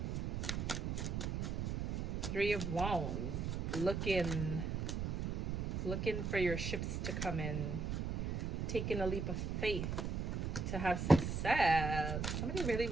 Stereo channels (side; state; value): right; noise; rumble, 1 dB below the sound